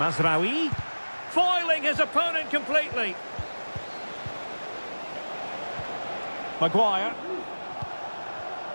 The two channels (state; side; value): inverted; both; correlation -1.00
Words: Foiling his opponent completely. Maguire.